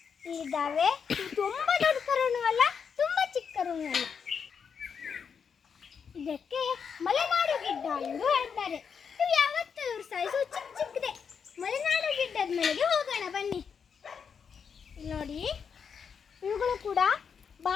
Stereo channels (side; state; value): right; quieter; 6.6 dB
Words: ಇಲ್ಲಿದ್ದಾವೆ. ತುಂಬಾ ದೊಡ್ಡ ಕರುನು ಅಲ್ಲ, ತುಂಬಾ ಚಿಕ್ಕ ಕರುನು ಅಲ್ಲ. ಇದಕ್ಕೆ ಮಲೆನಾಡು ಗಿಡ್ಡ ಎಂದು ಹೇಳ್ತಾರೆ. ಇವು ಯಾವತ್ತೂ ಇವ್ರ ಸೈಜು ಚಿಕ್ಕ ಚಿಕ್ಕದೆ. ಮಲೆನಾಡು ಗಿಡ್ಡದ ಮನೆಗೆ ಹೋಗೋಣ ಬನ್ನಿ. ನೋಡಿ, ಇವುಗಳು ಕೂಡ